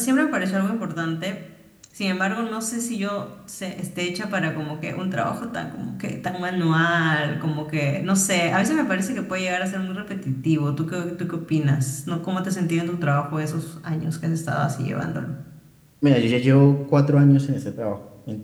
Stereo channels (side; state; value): both; identical; correlation 1.00